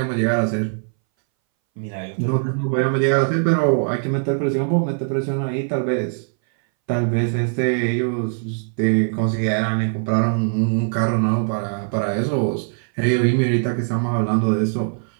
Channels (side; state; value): left; silent; 62 dB below the other